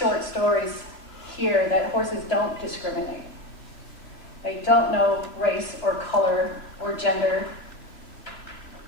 stories, hear that horses don't discriminate. They don't know race or color or gender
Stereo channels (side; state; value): right; late; 2.9 ms